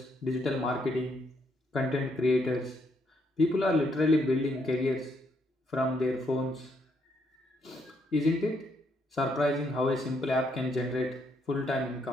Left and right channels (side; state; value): both; normal; correlation 0.74